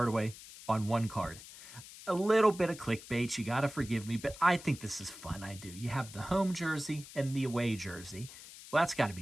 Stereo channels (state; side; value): noise; left; hiss, 16 dB below the sound